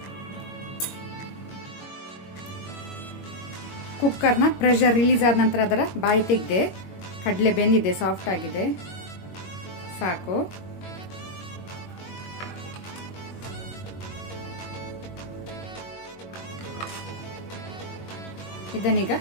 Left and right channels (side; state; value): right; late; 21 ms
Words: ಕುಕ್ಕರ್ನ ಪ್ರೆಷರ್ ರಿಲೀಸ್ ಆದ ನಂತರ ಅದರ ಬಾಯಿ ತೆಗೆದೆ. ಕಡಲೆ ಬೆಂದಿದೆ, ಸಾಫ್ಟ್ ಆಗಿದೆ, ಸಾಕು. ಇದನ್ನೀಗ